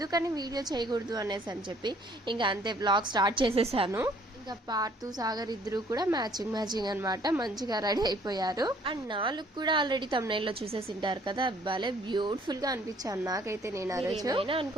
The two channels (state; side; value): normal; both; correlation 0.60